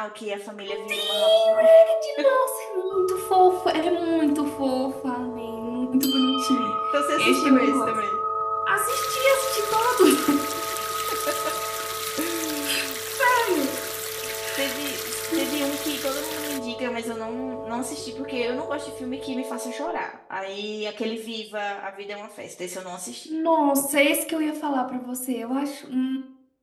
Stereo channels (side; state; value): both; identical; correlation 1.00